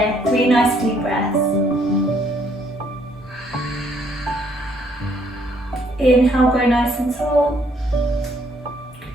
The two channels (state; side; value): normal; both; correlation 0.67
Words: 3 nice deep breaths. Inhale, grow nice and tall,